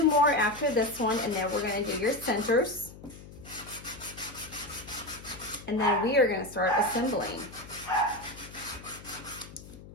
more after this one, and then we're gonna do your centers. And then we are gonna start assembling.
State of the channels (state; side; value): noise; left; hum, 17 dB below the sound